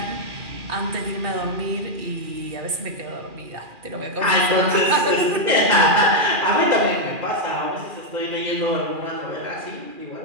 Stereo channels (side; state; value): left; late; 2.4 ms